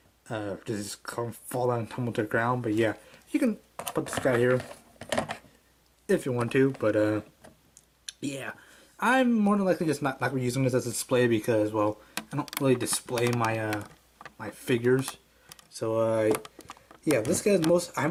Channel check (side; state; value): both; identical; correlation 1.00